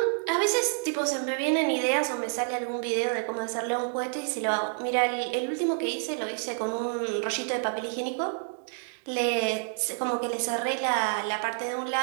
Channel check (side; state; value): left; silent; digital silence